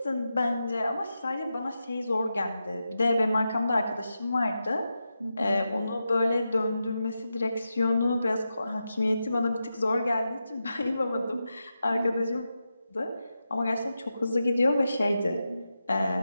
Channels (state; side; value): inverted; both; correlation -0.89